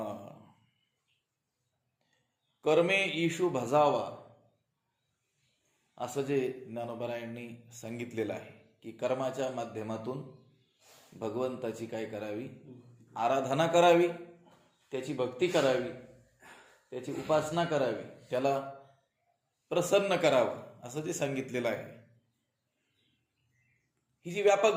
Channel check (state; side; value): identical; both; correlation 1.00